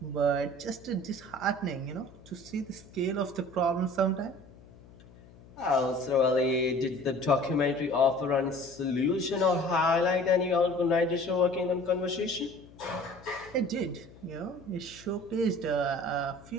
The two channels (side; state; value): left; noise; hum, 22 dB below the sound